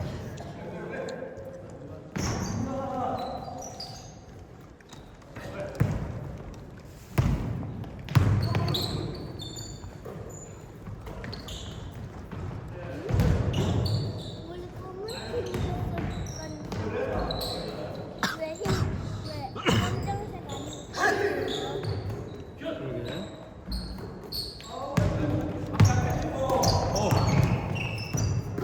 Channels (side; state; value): both; identical; correlation 1.00